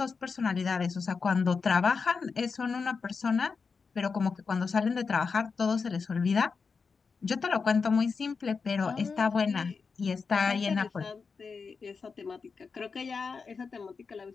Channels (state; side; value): quieter; right; 5.1 dB